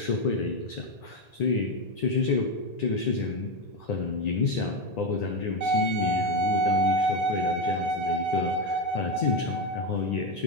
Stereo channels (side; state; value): right; late; 1.9 ms